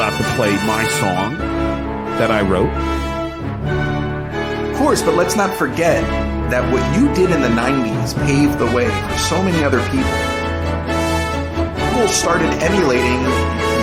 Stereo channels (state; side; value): identical; both; correlation 1.00